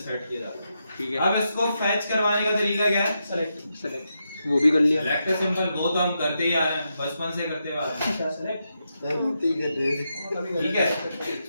किया जाता है। ठीक है, अब इसको फैच करवाने का तरीका क्या है? सेलेक्ट वो भी कर लिया। सेलेक्ट सिंपल, वो तो हम करते ही आ रहे हैं, बचपन से करते हुए आ रहे हैं। ठीक है,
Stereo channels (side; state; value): both; inverted; correlation -0.85